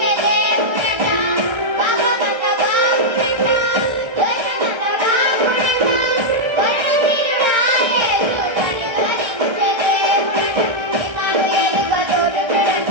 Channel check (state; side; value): late; left; 1.6 ms